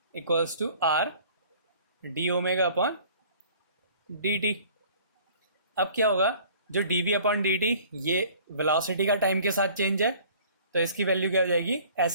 equals to r d omega upon d t. अब क्या होगा, जो d v upon d t ये वेलोसिटी का टाइम के साथ चेंज है, तो इसकी वैल्यू क्या हो जाएगी,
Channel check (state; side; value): inverted; both; correlation -0.51